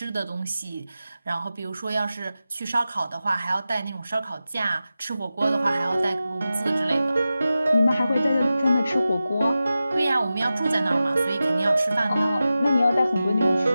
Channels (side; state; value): both; inverted; correlation -0.94